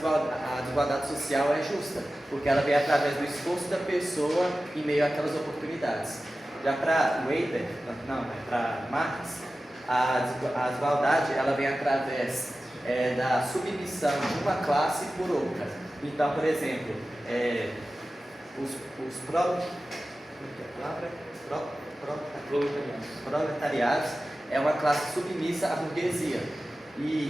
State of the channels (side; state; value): both; normal; correlation 0.95